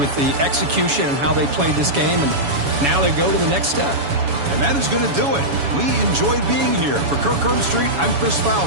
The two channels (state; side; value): late; left; 7.1 ms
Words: the execution and how they played this game. And now they go to the next step. And that is going to do it. We enjoyed being here. For Kirk Street, I'm Chris